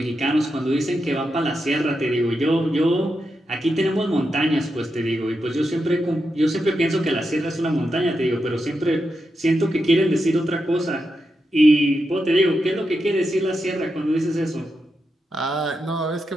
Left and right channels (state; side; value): normal; both; correlation 0.86